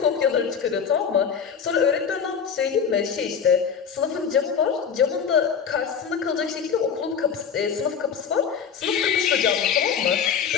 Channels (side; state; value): right; quieter; 7.0 dB